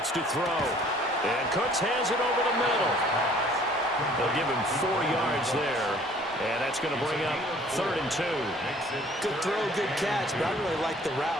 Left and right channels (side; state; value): both; normal; correlation 0.55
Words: to throw. And Cooks has it over the middle. They'll give him 4 yards there. And that's going to bring up 3rd and 2. Good throw, good catch, but I really like the route.